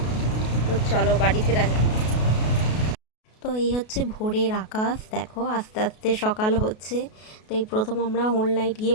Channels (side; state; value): right; late; 33 ms